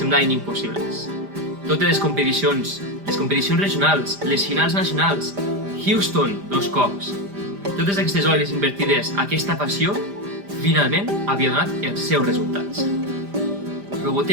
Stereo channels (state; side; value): late; left; 5.0 ms